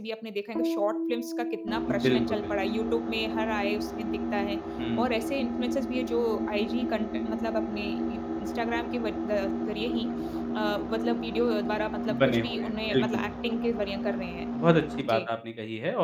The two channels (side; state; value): both; identical; correlation 1.00